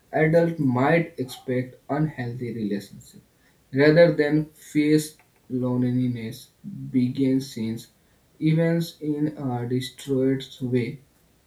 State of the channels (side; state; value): both; identical; correlation 1.00